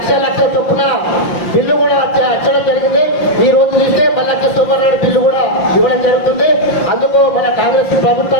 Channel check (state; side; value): late; right; 5.7 ms